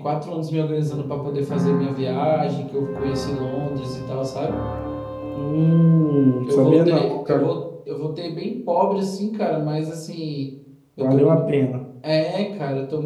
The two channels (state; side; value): identical; both; correlation 1.00